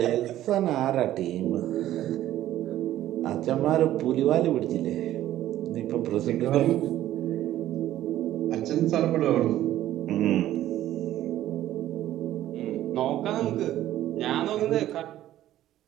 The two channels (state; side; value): quieter; left; 13.3 dB